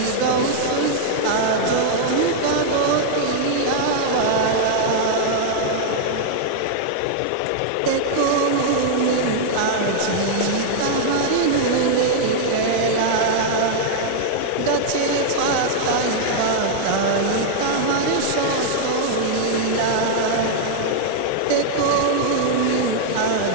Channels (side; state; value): both; different; correlation -0.01